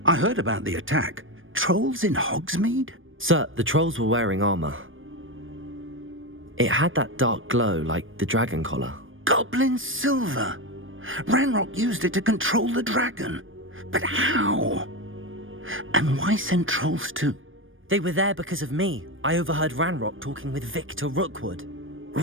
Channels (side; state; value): left; late; 0.58 ms